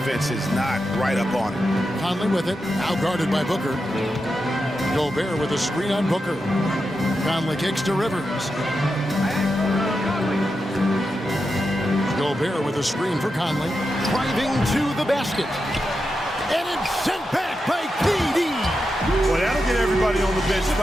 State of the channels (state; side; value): normal; both; correlation 0.88